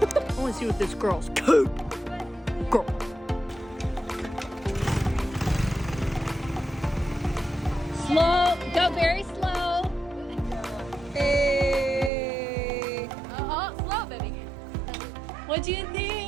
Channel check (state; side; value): drops out; left; at 12.1 s